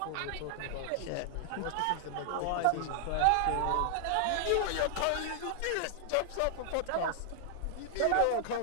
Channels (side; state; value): both; different; correlation 0.00